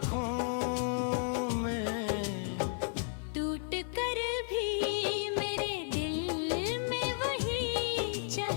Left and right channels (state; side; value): silent; right; digital silence